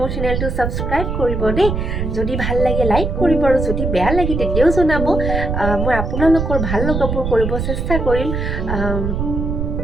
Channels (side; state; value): right; noise; rumble, 2 dB below the sound